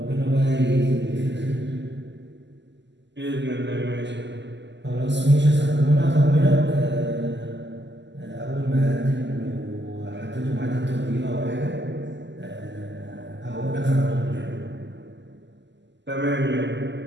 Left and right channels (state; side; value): late; left; 0.52 ms